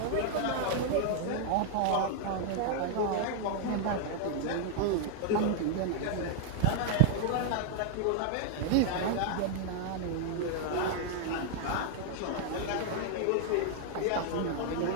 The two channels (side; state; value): both; different; correlation 0.00